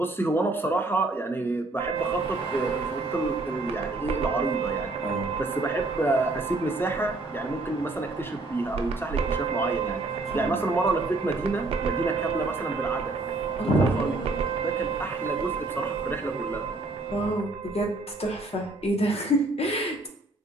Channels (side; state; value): left; quieter; 3.0 dB